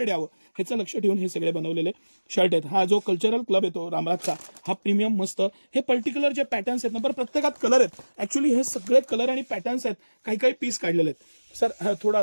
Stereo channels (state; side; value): inverted; both; correlation -1.00